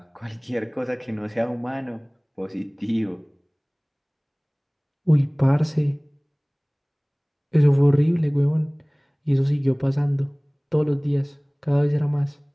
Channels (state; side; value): identical; both; correlation 1.00